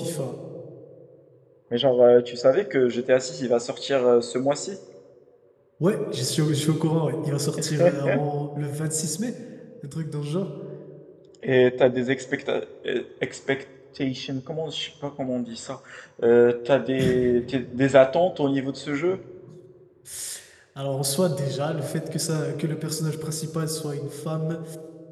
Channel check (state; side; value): identical; both; correlation 1.00